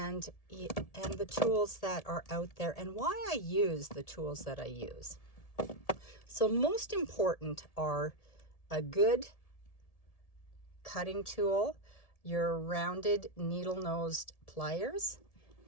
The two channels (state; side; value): late; right; 1.7 ms